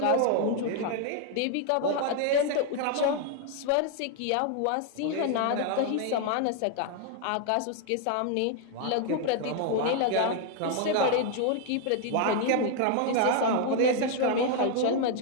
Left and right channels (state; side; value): different; both; correlation 0.00